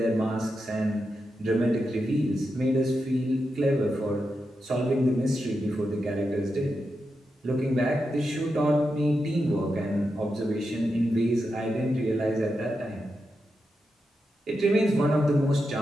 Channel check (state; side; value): normal; both; correlation 0.87